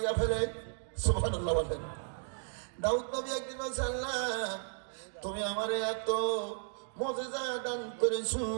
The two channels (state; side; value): silent; left; digital silence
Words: ফেলে। সুবহানাল্লাহ বলেন। দাউদ নবী একদিন বলছে, আল্লাহ, তুমি আমারে এত মুজিজা দান করেছো,